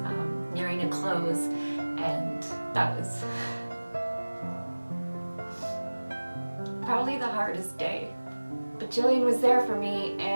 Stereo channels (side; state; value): both; inverted; correlation -1.00